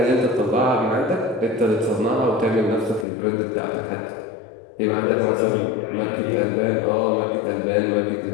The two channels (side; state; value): right; drops out; at 3.1 s